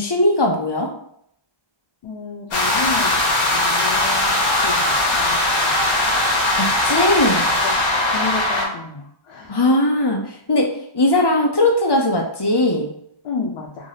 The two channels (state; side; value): late; right; 1.3 ms